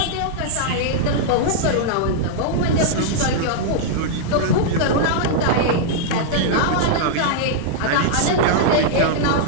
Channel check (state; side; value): different; both; correlation -0.01